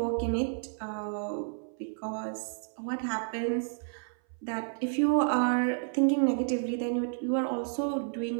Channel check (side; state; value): left; silent; 57 dB below the other